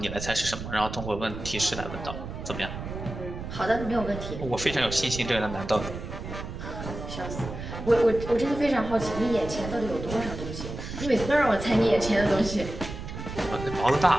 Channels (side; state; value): right; noise; rumble, 8 dB below the sound